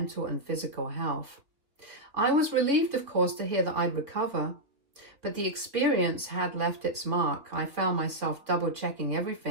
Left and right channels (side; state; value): left; late; 3.4 ms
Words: and physical health. I was relieved, of course, to hear that I'd recover, but the experience had left its mark. I found myself double-checking